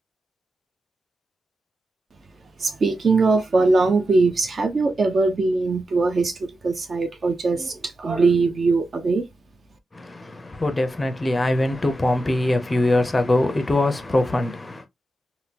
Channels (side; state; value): both; normal; correlation 0.89